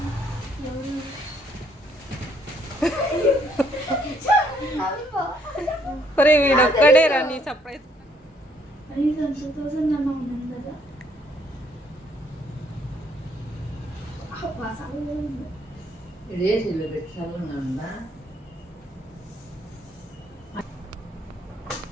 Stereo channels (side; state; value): both; normal; correlation 0.67